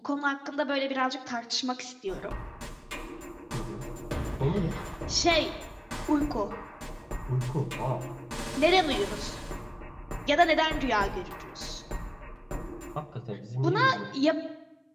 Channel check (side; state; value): both; identical; correlation 1.00